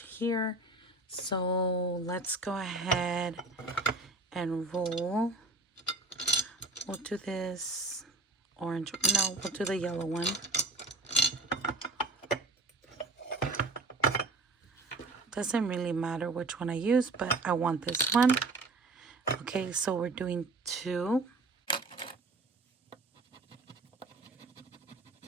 here. So let's go ahead and roll. We'll do this orange. No, we'll do the yellow one. Doesn't really matter which one I use, but I want this one. Okay, so we're doing 2.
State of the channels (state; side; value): quieter; left; 3.2 dB